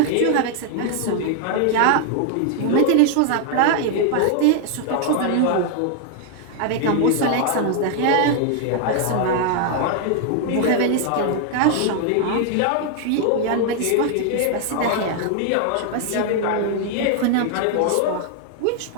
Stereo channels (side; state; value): both; different; correlation 0.00